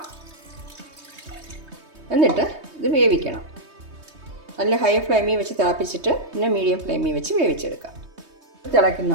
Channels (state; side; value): late; left; 3.2 ms